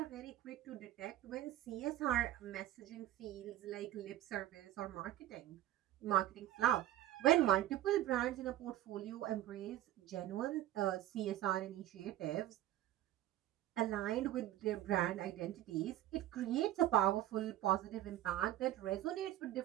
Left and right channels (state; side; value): quieter; left; 13.7 dB